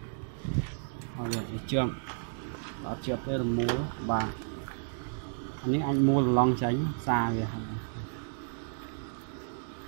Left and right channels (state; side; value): silent; left; digital silence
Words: rồi chậm đã chụp đây là múa và những anh mua là lon tránh xa về